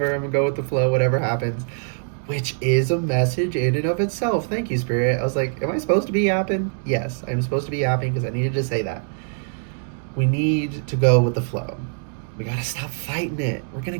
I'm gonna go with the flow, whatever happens. Which is a message in and of itself. Thank you, Spirit. I was like, am I supposed to be yapping? Yes, I'm supposed to be yapping because I needed to say that. We need to go with the flow. We gotta stop fighting it. We're gonna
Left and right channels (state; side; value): silent; left; digital silence